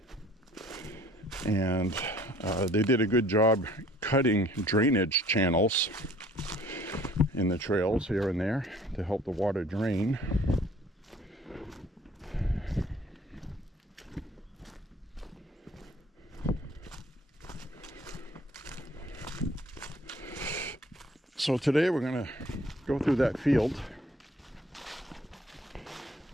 And they did a good job cutting drainage channels in the trails here and there to help the water drain. So today we're going to go through that field.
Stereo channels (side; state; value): both; normal; correlation 0.55